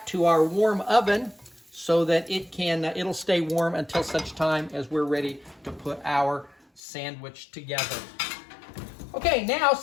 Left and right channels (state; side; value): drops out; right; at 6.8 s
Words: to our warm oven so that it'll stay warm until such time as we're ready to put our sandwich together. Okay, now